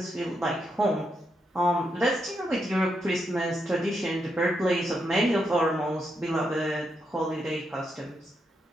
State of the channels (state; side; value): normal; both; correlation 0.82